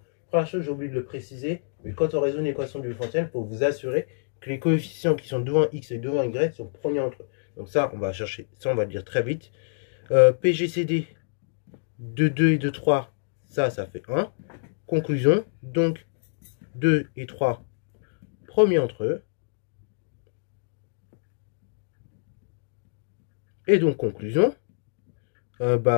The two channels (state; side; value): silent; right; digital silence